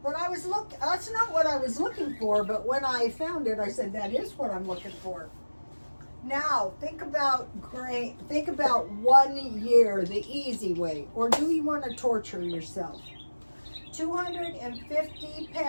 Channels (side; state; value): both; inverted; correlation -1.00